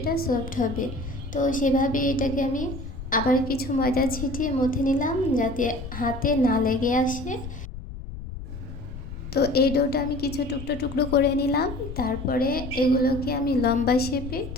সফট হবে। তো সেভাবে এটাকে আমি আবার কিছু ময়দা ছিটিয়ে মথে নিলাম যাতে হাতে না লেগে আসে। তো এই ডোটা আমি কিছু টুকরো টুকরো করে নিলাম, তারপরে এগুলোকে আমি লম্বা শেপে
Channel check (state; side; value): noise; left; rumble, 10 dB below the sound